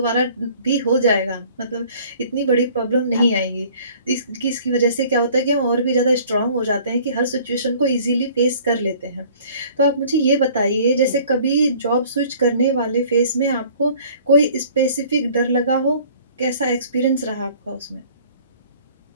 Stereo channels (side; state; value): both; inverted; correlation -0.52